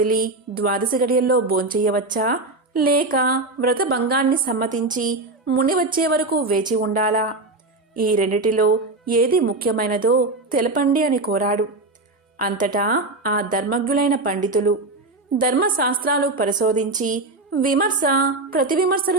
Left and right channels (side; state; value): left; quieter; 3.1 dB